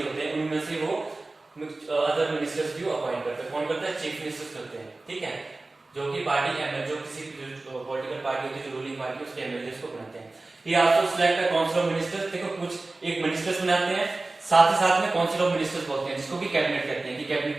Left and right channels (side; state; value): left; quieter; 3.2 dB